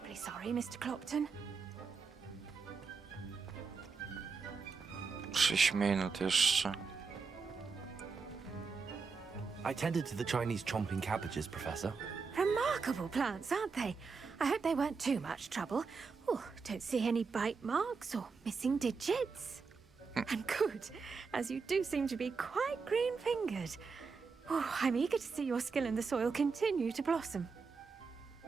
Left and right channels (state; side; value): quieter; left; 5.0 dB